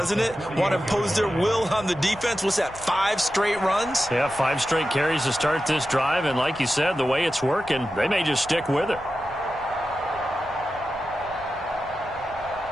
it? Want to impose their will on the defense. What's that, 5 straight runs? Yeah, 5 straight carries to start this drive. And like you said, the way it's working, they may just stick with it.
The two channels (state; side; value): noise; right; rumble, 20 dB below the sound